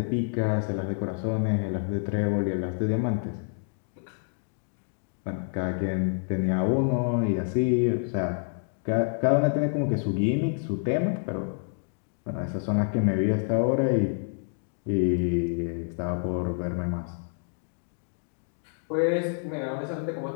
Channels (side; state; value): right; silent; 59 dB below the other